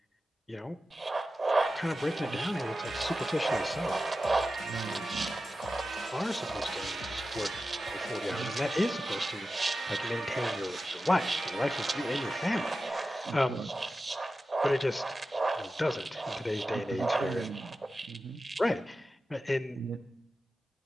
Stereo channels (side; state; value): both; normal; correlation 0.93